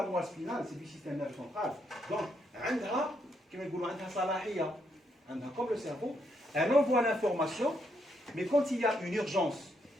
moelle spinale, c'est du système nerveux central. Donc, comme le cerveau, elle envoie l'information, mais quand il y a une urgence,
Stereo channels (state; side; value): normal; both; correlation 0.77